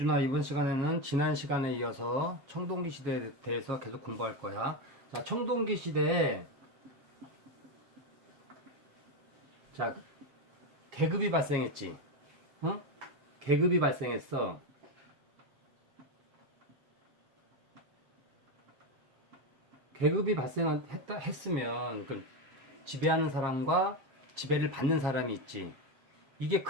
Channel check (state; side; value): late; left; 7.3 ms